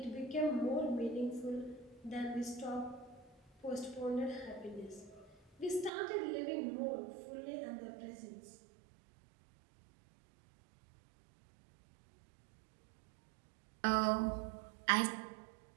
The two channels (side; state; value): left; drops out; at 5.9 s